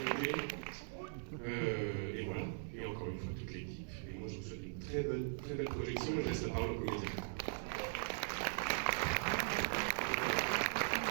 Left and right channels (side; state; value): left; silent; 51 dB below the other